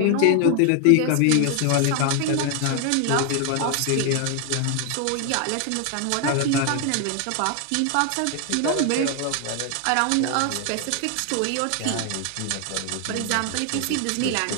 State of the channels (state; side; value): different; both; correlation 0.00